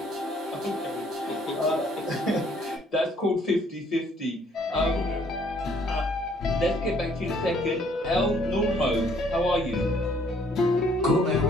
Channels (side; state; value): both; normal; correlation 0.63